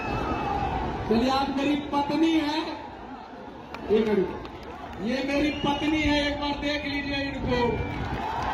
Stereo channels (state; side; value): identical; both; correlation 1.00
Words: चलिए, आप मेरी पत्नी है, एक मिनट, ये मेरी पत्नी है, एक बार देख लीजिए इनको।